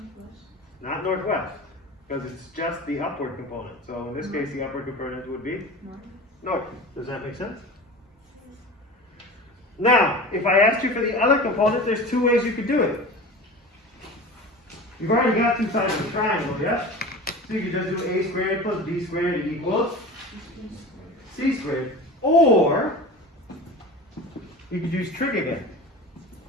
Not northwest. Because it's just the upward component. So in this case, the upward component would be North. north. Does that make sense? Now, if I asked you for the other component, there's 2 ways you could do it. You've already got 2 sides of the triangle, yes? So you could just do a squared plus b squared equals c squared. Or, you could use trig again.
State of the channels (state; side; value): normal; both; correlation 0.34